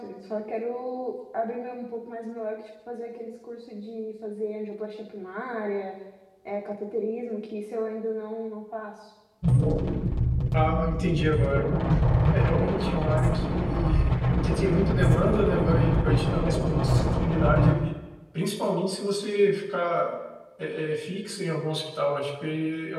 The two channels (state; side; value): identical; both; correlation 1.00